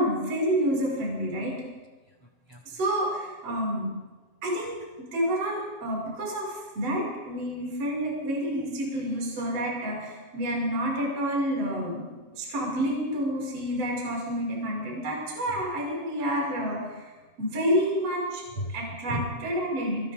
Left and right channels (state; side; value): late; left; 7.3 ms